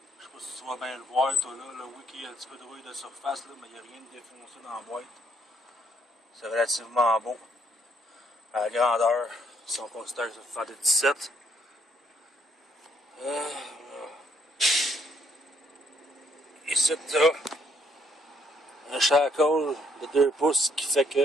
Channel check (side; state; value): both; normal; correlation 0.70